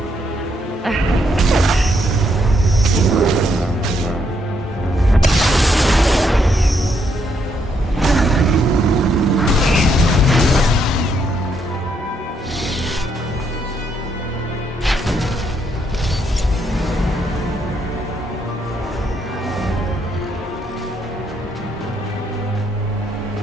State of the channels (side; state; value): both; normal; correlation 0.75